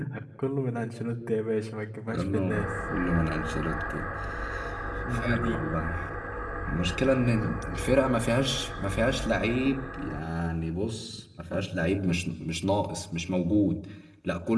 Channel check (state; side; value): identical; both; correlation 1.00